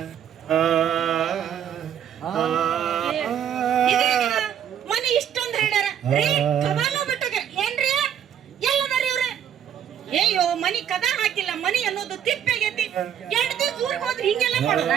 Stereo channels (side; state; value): left; quieter; 9.4 dB